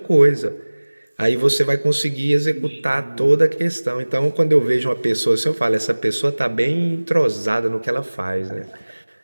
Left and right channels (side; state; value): both; inverted; correlation -1.00